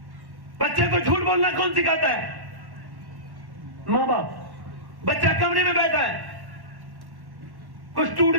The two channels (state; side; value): late; left; 1.1 ms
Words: بچے کو جھوٹ بولنا کون سکھاتا ہے؟ ماں باپ۔ بچہ کمرے میں بیٹھا ہے، کچھ ٹوٹ